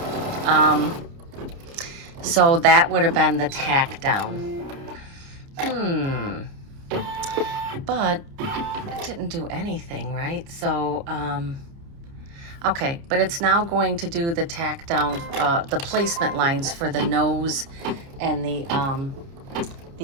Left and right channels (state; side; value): late; left; 29 ms